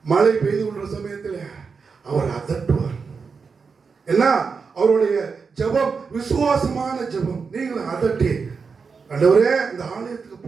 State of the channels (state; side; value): quieter; left; 5.3 dB